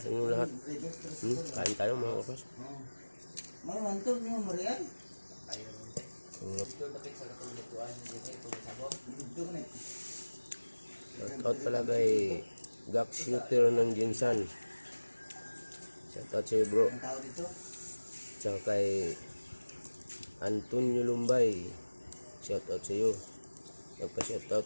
inyong lahat. Kain tayo mga kaprats. Shoutout pala kay Gak Shooter ng Jinsan. Shoutout sa'yo bro. Tsaka kay Antonio Lumbay. Shoutout sa'yo.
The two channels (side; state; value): both; inverted; correlation -1.00